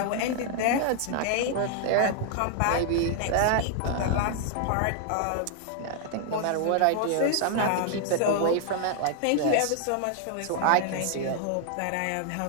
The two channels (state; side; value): different; both; correlation 0.00